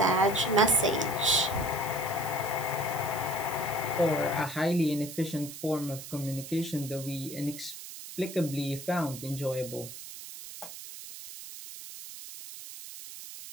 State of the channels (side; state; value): right; noise; hiss, 12 dB below the sound